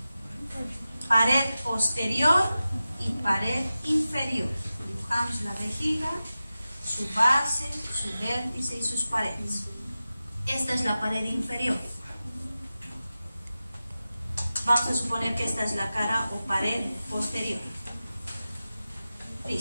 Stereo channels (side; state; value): both; inverted; correlation -0.94